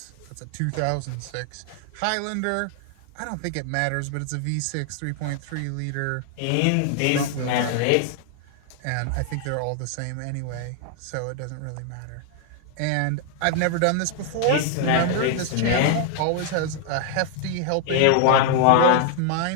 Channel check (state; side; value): different; both; correlation 0.00